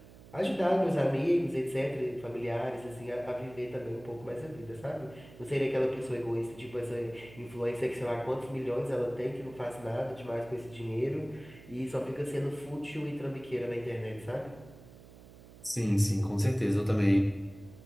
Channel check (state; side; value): noise; right; hum, 19 dB below the sound